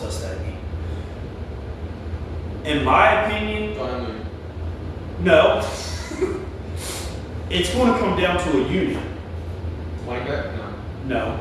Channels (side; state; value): both; identical; correlation 1.00